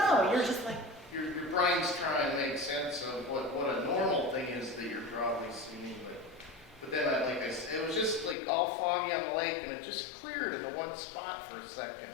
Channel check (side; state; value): right; drops out; at 8.3 s